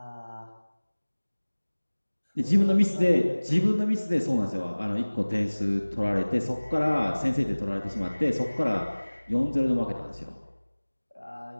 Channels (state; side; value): inverted; both; correlation -1.00